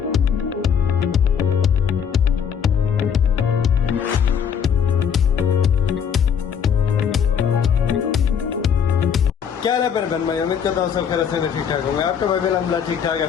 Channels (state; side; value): quieter; right; 7.6 dB